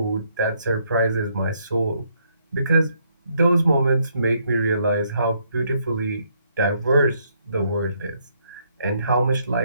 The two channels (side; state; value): both; inverted; correlation -0.72